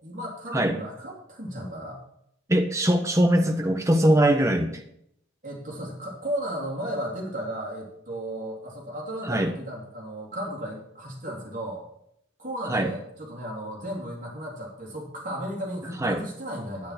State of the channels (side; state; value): both; normal; correlation 0.73